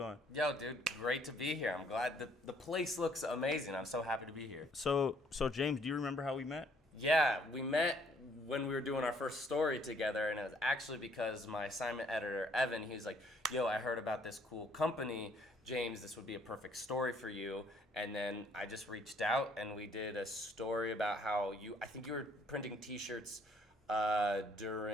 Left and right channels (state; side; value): normal; both; correlation 0.64